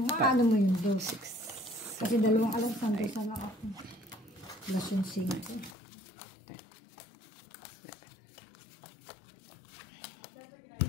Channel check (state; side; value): drops out; right; at 5.8 s